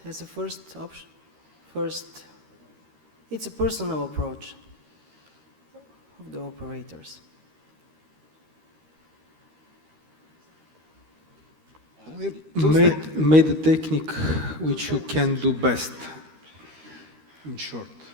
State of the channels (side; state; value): left; late; 13 ms